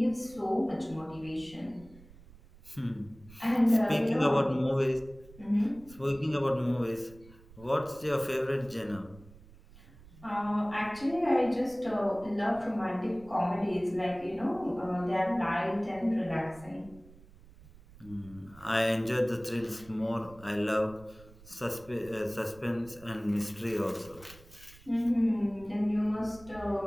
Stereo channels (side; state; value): right; noise; rumble, 22 dB below the sound